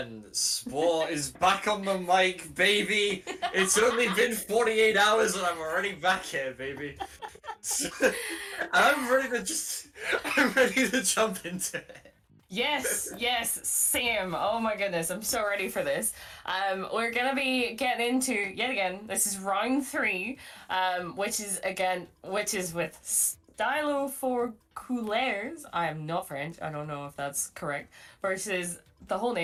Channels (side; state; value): both; identical; correlation 1.00